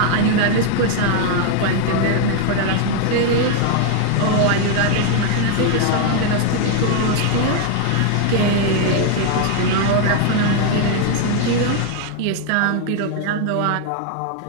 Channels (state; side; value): different; both; correlation 0.00